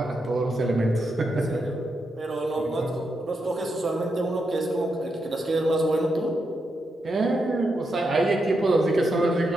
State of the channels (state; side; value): normal; both; correlation 0.84